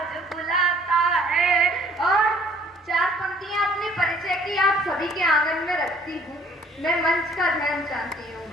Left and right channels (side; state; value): both; normal; correlation 0.58